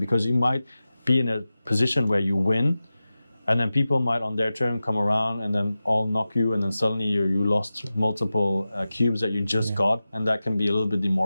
you might be in a position where you win, and then people might on their turn come around and then all knock you, and then suddenly you lost multiple cubes that you just got, and that can be a little bit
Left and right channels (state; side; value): inverted; both; correlation -0.94